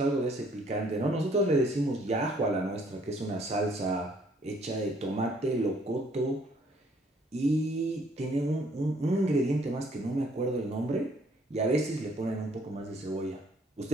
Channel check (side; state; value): both; normal; correlation 0.63